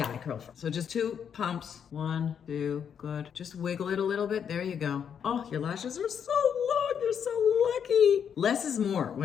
I curl first. So just 2 pumps. 1, 2, good. Just wiggle it a little bit. There you go. Oh, your lashes are so long. You're so lucky. Less is more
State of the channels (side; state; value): right; quieter; 7.8 dB